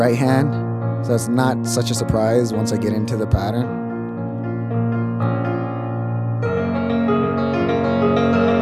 hand, so it's not such a surprise once I get into the pattern.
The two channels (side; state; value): both; identical; correlation 1.00